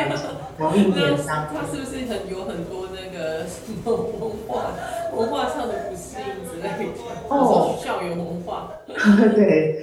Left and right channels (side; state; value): both; identical; correlation 1.00